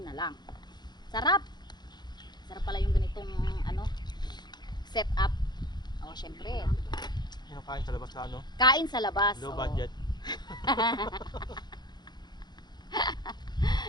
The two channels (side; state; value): right; late; 0.21 ms